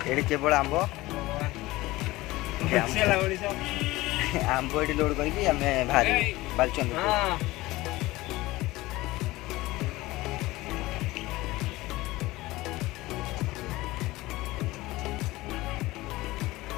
ये केवल आंब आंब ये लोड करके आम बाहर बालचंद्रपुर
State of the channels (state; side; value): quieter; right; 19.2 dB